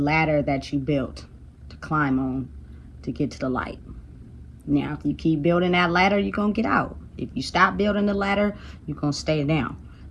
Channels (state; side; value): identical; both; correlation 1.00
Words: that you built to climb on to get to the light. Now, if you keep building that ladder, you're going to get out. If you stop building the ladder, you're going to stay down.